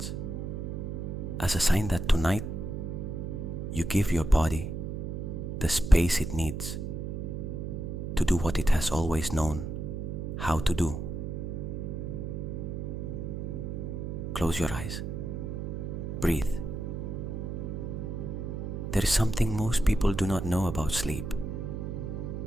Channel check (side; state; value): right; noise; hum, 4 dB below the sound